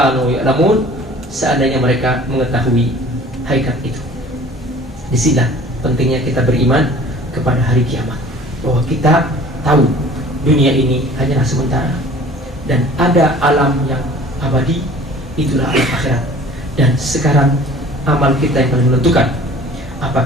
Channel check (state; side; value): normal; both; correlation 0.47